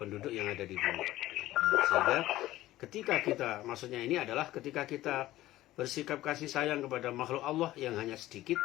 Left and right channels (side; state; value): right; quieter; 15.7 dB